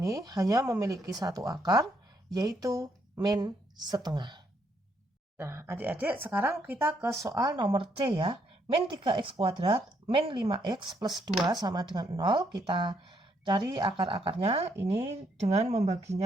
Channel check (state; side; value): normal; both; correlation 0.73